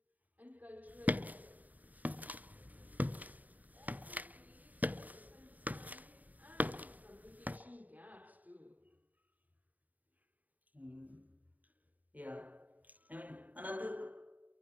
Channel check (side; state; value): left; late; 0.078 ms